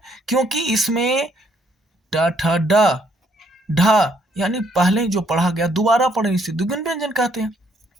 क्योंकि इसमें ट ठ ड ढ यानी पहले जो पढ़ा गया दोबारा पढ़े, इसे द्विगुण व्यंजन कहते हैं।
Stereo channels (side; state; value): both; normal; correlation 0.69